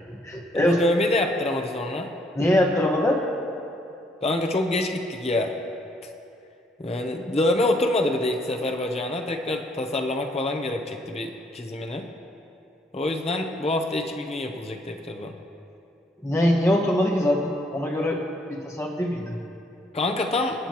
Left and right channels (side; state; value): both; normal; correlation 0.68